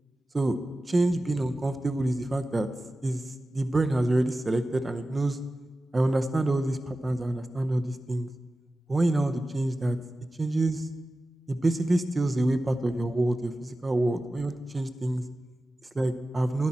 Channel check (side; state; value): both; normal; correlation 0.95